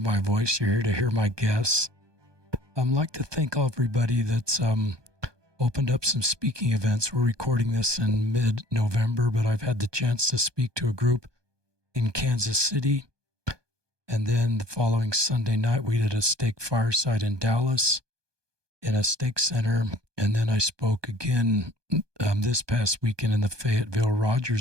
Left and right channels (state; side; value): late; left; 1.2 ms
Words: voice, you're here to hear my guests. I'd like to thank everybody that's opened up some speaking events. We're recording this in mid-November, but I've had the chance to speak to a group in Kansas City. And then the following Sunday night, we did a steak fireside in Dallas in a steak center. And then I spoke again this past weekend in the Fayetteville,